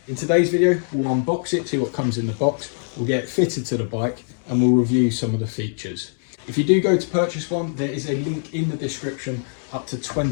In today's video, we'll unbox it, see what comes in the box, we'll get it fitted to the bike and we'll review some of the features. If you do go to purchase one, there is a link in the description up to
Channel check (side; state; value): right; silent; digital silence